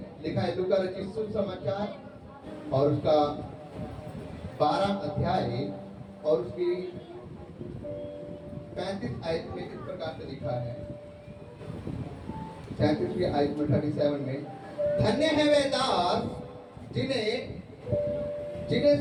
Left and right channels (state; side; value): identical; both; correlation 1.00